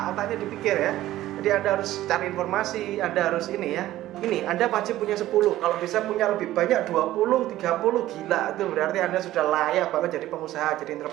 dipikir ya. Jadi Anda harus cari informasi, Anda harus ini ya. Ini Anda wajib punya 10, kalau bisa punya lebih banyak 20, 30, gila, itu berarti Anda sudah layak banget jadi pengusaha, jadi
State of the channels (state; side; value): quieter; left; 14.7 dB